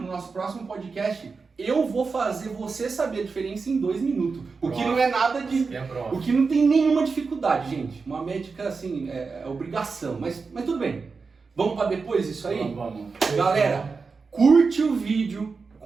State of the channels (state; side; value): quieter; left; 4.7 dB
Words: nosso próximo podcast, eu vou fazer você saber a diferença em 2 minutos. O que não é nada de... O que não tem nenhuma dificuldade, gente. Uma médica, assim, é obrigação. Mas tudo bem. Vamos para depois isso aí? Vamos. Galera, curte o vídeo,